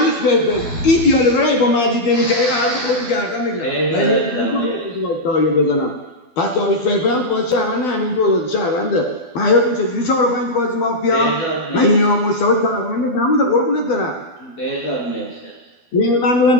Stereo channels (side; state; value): right; late; 12 ms